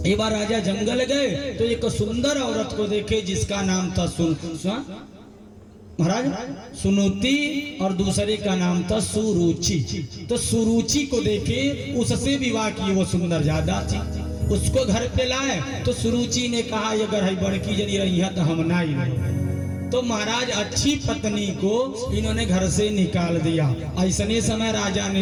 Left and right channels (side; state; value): both; identical; correlation 1.00